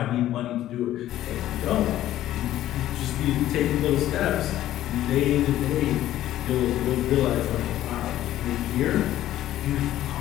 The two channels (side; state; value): right; quieter; 13.4 dB